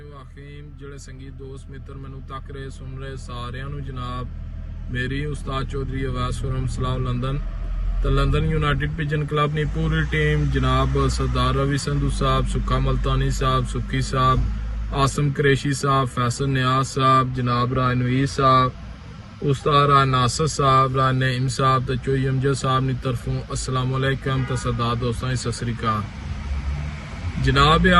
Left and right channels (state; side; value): identical; both; correlation 1.00